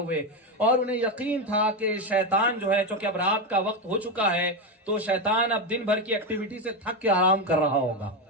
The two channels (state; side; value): normal; both; correlation 0.12